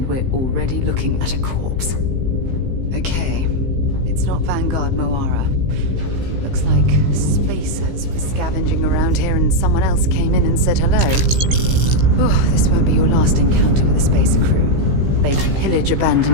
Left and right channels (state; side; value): late; left; 15 ms